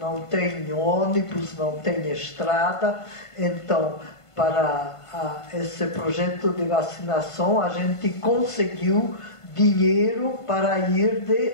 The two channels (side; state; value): right; late; 1.5 ms